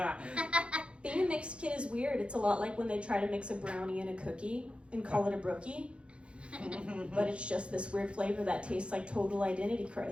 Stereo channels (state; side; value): late; left; 0.058 ms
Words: Being a mixed kid is weird. It's a lot like when they try to mix a brownie and a cookie and call it a brookie. But it's just this weird flavor that tastes like total identity